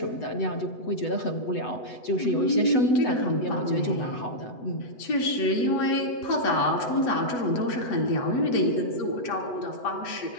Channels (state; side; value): late; right; 8.0 ms